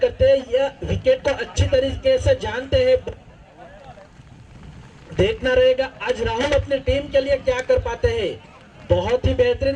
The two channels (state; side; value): identical; both; correlation 1.00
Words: करते हैं। यह विकेट को अच्छी तरीके से जानते हैं। देखना रहेगा आज राहुल अपनी टीम के लिए क्या कर पाते हैं। बहुत ही